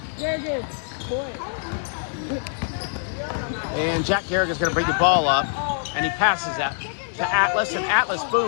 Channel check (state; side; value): silent; right; digital silence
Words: And Jack Garrigan's going to bring the ball up, and he passes that to Atlas, and Atlas,